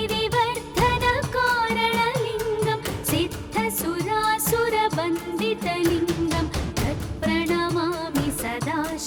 सिद्धसुरासुरवन्दितलिङ्गं तत्प्रणमामि सदा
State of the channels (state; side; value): identical; both; correlation 1.00